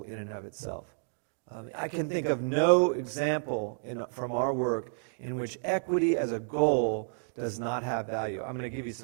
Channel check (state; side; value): silent; left; digital silence